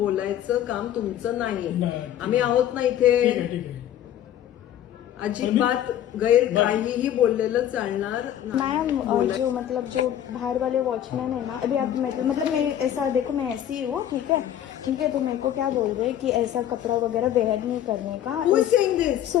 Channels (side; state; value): right; quieter; 11.1 dB